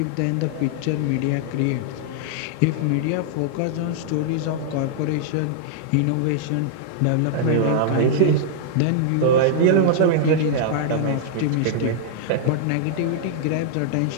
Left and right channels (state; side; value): different; both; correlation -0.01